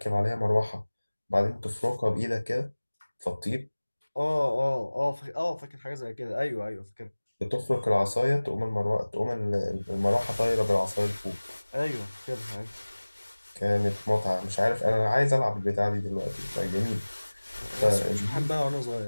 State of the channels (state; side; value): inverted; both; correlation -1.00